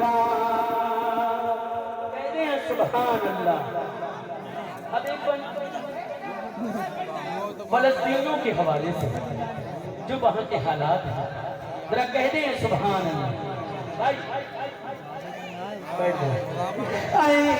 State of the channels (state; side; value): identical; both; correlation 1.00